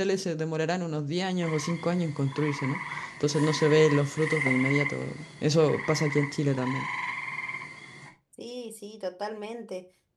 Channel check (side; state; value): both; identical; correlation 1.00